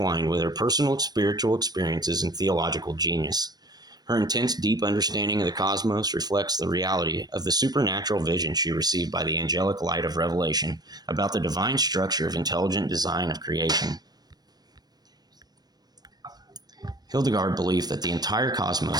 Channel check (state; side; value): late; left; 0.19 ms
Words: with her personal spiritual experiences and theological genius. Her intense, deep understanding of the cosmos reflects the reality of the supernatural vision she received by the angelic light of revelation about the divine structure of intelligent design of creation. Hildegard believed that the entire